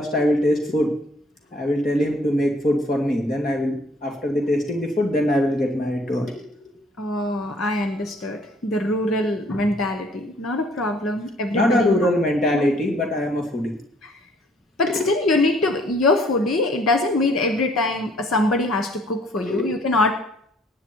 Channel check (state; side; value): normal; both; correlation 0.60